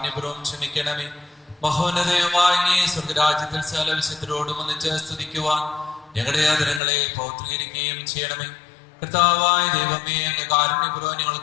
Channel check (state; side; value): drops out; right; at 6.8 s